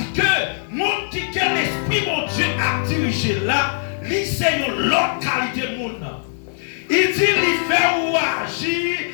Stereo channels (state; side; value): silent; right; 63 dB below the other